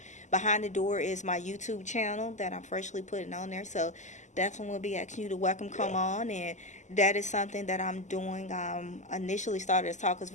Behind the Door is my YouTube channel that I'm freshly putting on there. So definitely will be asking you to come on. And that is something that I'm doing. Initially started as Talkers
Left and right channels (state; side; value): late; right; 0.34 ms